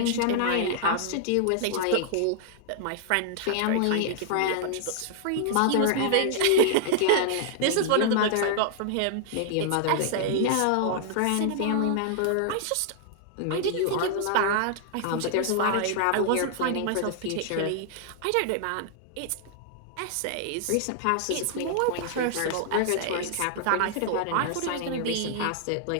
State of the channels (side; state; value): both; different; correlation -0.01